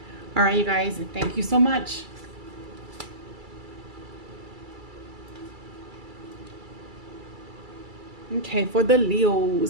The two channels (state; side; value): late; left; 2.3 ms